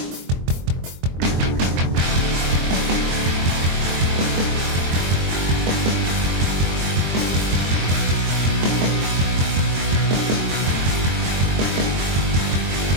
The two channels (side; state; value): left; late; 23 ms